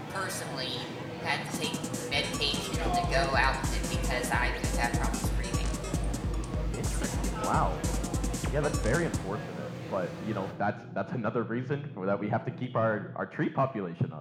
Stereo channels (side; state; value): both; identical; correlation 1.00